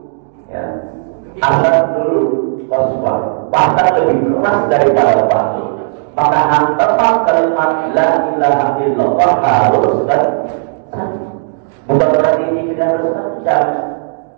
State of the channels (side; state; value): left; silent; digital silence